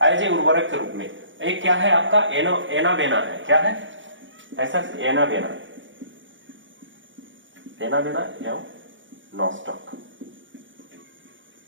एज ए उर्वरक के रूप में। एक क्या है आपका, एनाबेना है, क्या है ऐसा, एनाबेना, एनाबेना एवं नॉस्टॉक।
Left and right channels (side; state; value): left; late; 0.56 ms